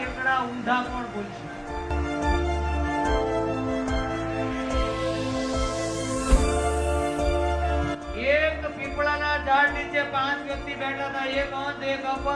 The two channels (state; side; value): identical; both; correlation 1.00